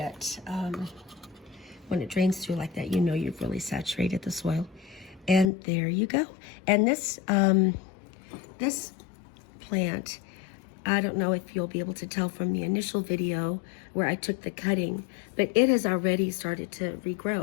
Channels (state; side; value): drops out; right; at 5.5 s